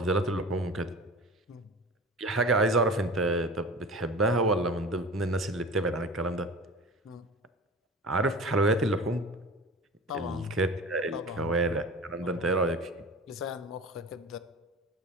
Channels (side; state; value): both; normal; correlation 0.36